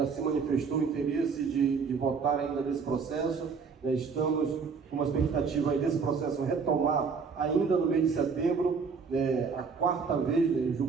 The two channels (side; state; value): left; quieter; 5.4 dB